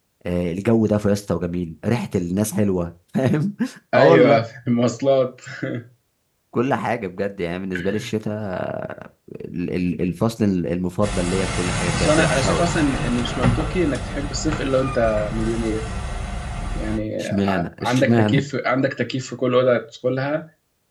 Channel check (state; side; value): identical; both; correlation 1.00